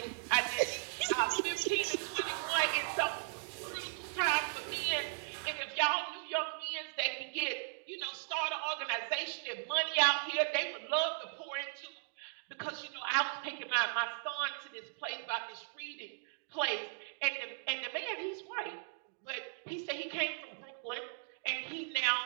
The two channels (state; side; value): silent; left; digital silence